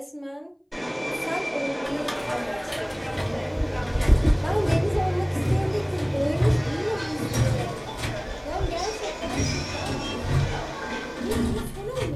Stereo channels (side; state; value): both; identical; correlation 1.00